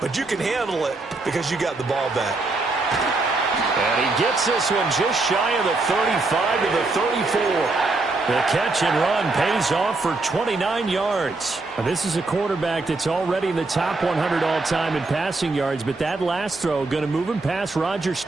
but you can handle it because you got the ball back. And he gets this one just shy of the 35 to the 34. The catch and run pays off for 29 yards. Now, this is a quarterback that's already in the top 100 all-time in passing yards, but that last throw going to move him past Roger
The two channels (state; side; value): quieter; left; 3.4 dB